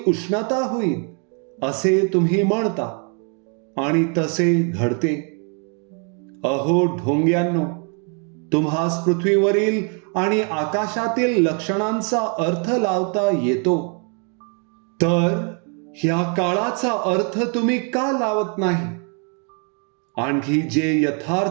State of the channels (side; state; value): left; quieter; 39.0 dB